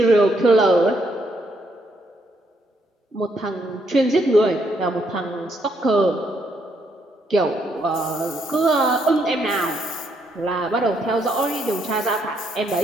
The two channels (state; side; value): normal; both; correlation 0.74